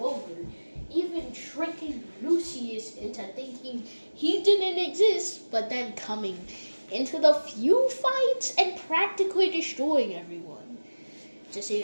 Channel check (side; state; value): both; inverted; correlation -1.00